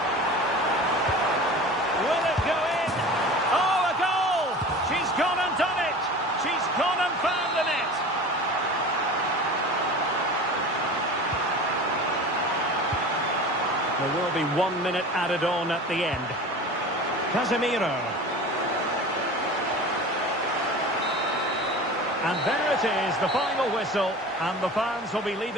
There will be 1 minute added on at the end. Casemiro. And there it is, the final whistle. And the fans will be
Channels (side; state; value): both; normal; correlation 0.36